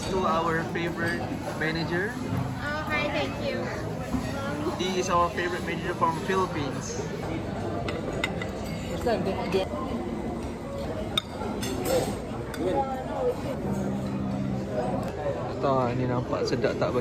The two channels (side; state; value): both; identical; correlation 1.00